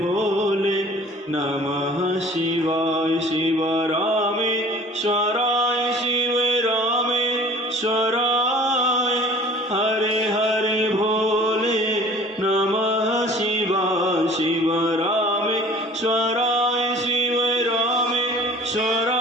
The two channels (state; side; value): normal; both; correlation 0.48